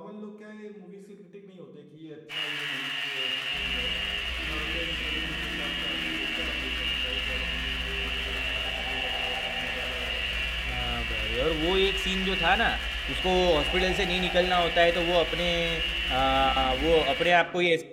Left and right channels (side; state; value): both; identical; correlation 1.00